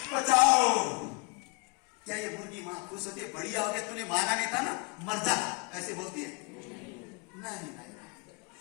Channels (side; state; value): right; quieter; 31.2 dB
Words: बचाओ। क्या ये मुर्गी मां खुश होती है, बढ़िया हो गया तूने माना नहीं था ना, मर जा, ऐसे बोलती है? नहीं नहीं,